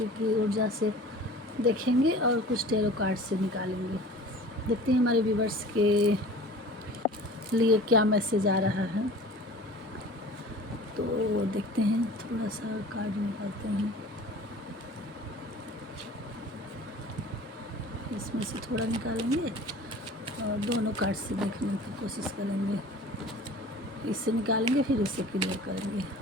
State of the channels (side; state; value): both; normal; correlation 0.43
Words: की ऊर्जा से देखेंगे और कुछ टेरो कार्ड से निकालेंगे। देखते हैं हमारे व्यूवर्स के लिए क्या मैसेज आ रहा है। तो देखते हैं, थोड़ा सा कार्ड निकालते हैं, इसमें से थोड़ा निकालेंगे और दोनों कार्ड से देखने की कोशिश करेंगे। इससे निकालेंगे फिर इससे क्लियर करेंगे।